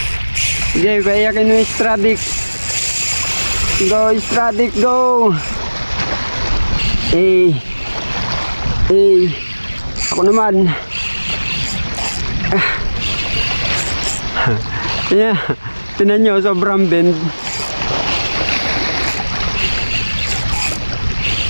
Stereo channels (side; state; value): both; inverted; correlation -1.00